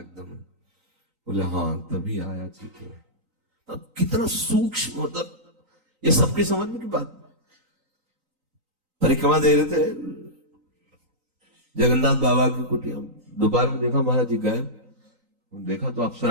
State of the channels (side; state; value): left; late; 3.9 ms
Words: बोले हाँ तभी आया ठीक है। अब कितना सूक्ष्म, मतलब ये सबकी समझ में की बात। परिक्रमा दे रहे थे जगन्नाथ बाबा की कुटिया, दोपहर में देखा महाराज जी गए, देखा तो